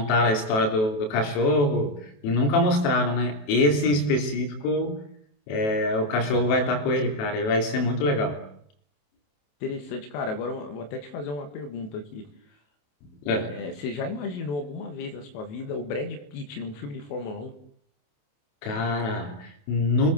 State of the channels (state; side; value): late; right; 28 ms